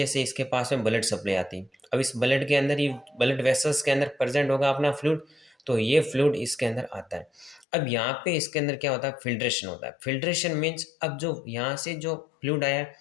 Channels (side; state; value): right; drops out; at 7.7 s